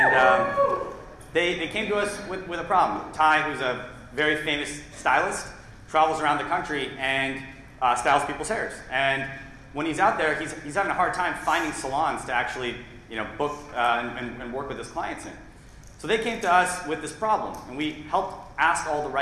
they came to us with a problem. Ty, who's a very famous stylist, travels around the country and styles people's hairs. And when he's out there, he's having a hard time finding salons to actually book and work with his clients in. So they came to us with this problem, and we helped ask all the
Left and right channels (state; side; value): identical; both; correlation 1.00